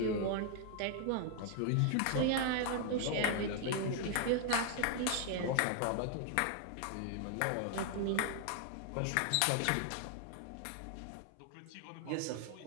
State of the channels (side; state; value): both; different; correlation 0.00